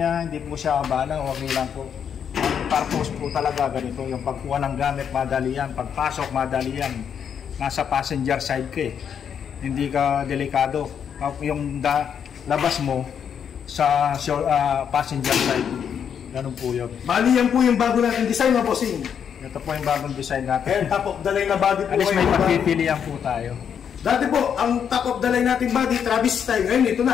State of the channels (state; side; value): quieter; right; 7.9 dB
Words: hindi po siya abala, okay lang po. Purpose po talaga ganito, yung pagkuha ng gamit madali yan, pagpasok madali yan, nasa passenger side ka hindi ka delikado, yung labas mo sa passenger side, ganun po yun. Bali yan po yung bago natin design na bossing. Ito po yung bagong design natin. Top of the line na body po. Alis may pagpipilian po tayo. Dati po, ang top of the line natin body, Travis style. Ngayon ito